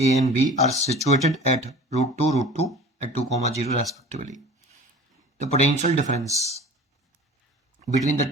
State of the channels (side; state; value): both; normal; correlation 0.41